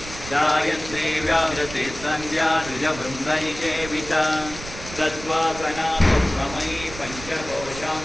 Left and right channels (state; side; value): noise; right; rumble, 13 dB below the sound